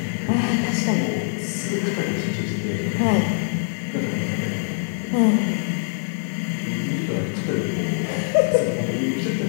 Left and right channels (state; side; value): silent; right; 59 dB below the other